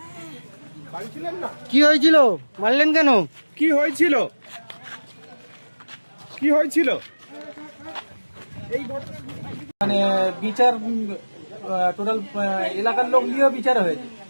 বাড়ি ছিলেন না? কি হয়েছিল? মারলেন কেন? কি হয়েছিল? কি হয়েছিল? এই মানে বিচার টোটাল এলাকার লোক দিয়েও বিচার হয়েছে,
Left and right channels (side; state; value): both; inverted; correlation -1.00